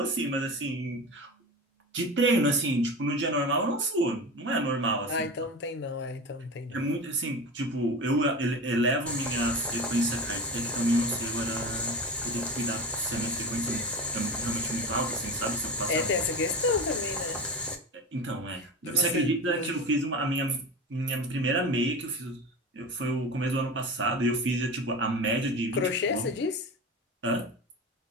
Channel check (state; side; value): normal; both; correlation 0.28